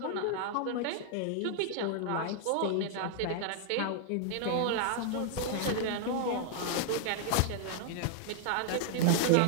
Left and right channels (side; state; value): both; different; correlation 0.00